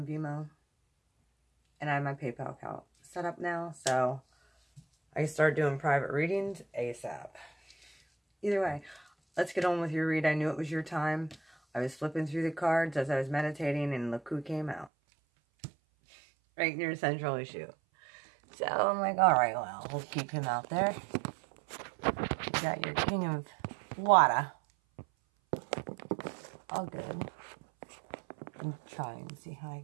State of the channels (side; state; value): left; drops out; at 14.9 s